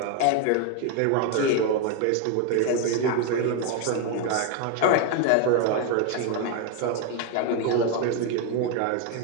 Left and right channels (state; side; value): different; both; correlation 0.01